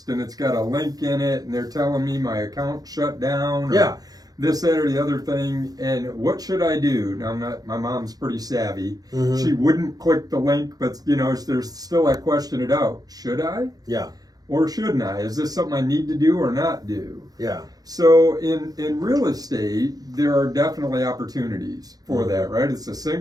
and it's got a link in it, and they're telling me my account shut down. Yeah. This, that, or the other thing, and what should I do? Now, my mom's pretty savvy. Mm-hmm. She wouldn't click the link, but, there's still that question it out. Should I? Yeah. Or shouldn't I? Is this something I need to do or not do? Yeah. So in real estate, there are definitely opportunities for that, right? It's the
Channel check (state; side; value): late; left; 0.19 ms